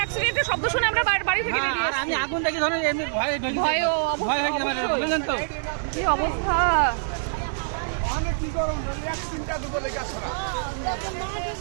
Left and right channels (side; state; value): left; silent; 56 dB below the other